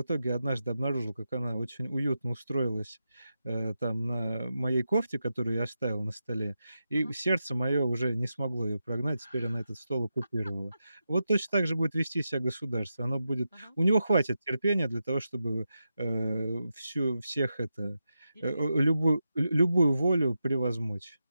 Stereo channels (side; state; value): both; inverted; correlation -0.88